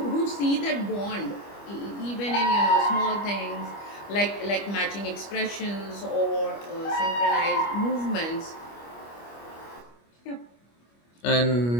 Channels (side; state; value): right; late; 25 ms